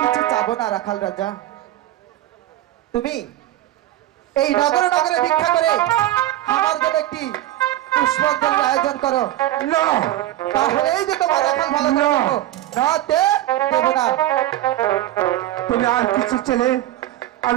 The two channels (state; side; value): quieter; left; 14.1 dB